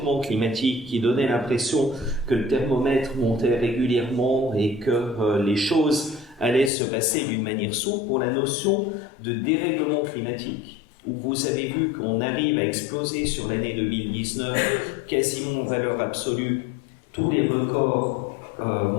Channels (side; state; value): right; drops out; at 6.7 s